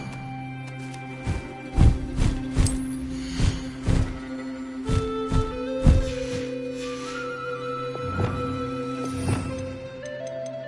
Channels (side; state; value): both; identical; correlation 1.00